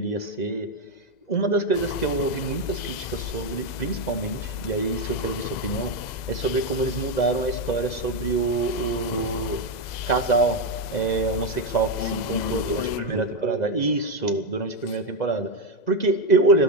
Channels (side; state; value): right; late; 2.0 ms